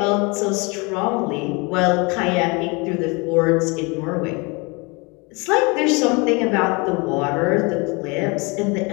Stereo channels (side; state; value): right; quieter; 28.6 dB